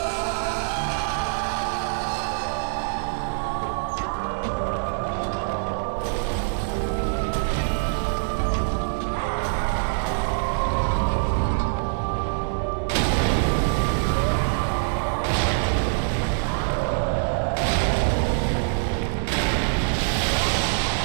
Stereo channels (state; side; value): silent; left; digital silence